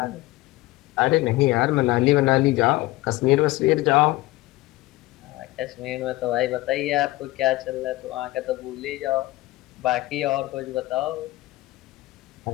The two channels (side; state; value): right; quieter; 19.2 dB